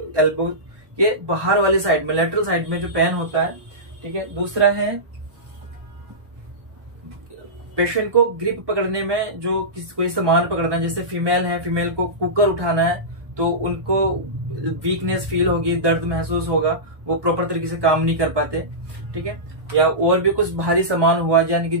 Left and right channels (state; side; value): late; left; 1.2 ms